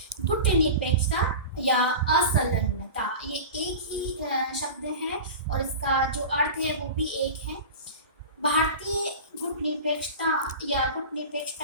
गुटनिरपेक्षता या असंलग्नता। ये एक ही शब्द है और इसका जो अर्थ है वो भी एक है। भारतीय गुटनिरपेक्षता या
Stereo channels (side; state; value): both; inverted; correlation -0.31